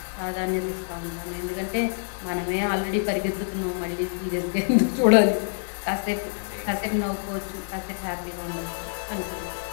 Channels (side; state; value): right; silent; digital silence